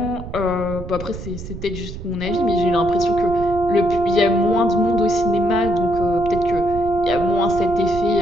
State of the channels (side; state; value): right; noise; rumble, 11 dB below the sound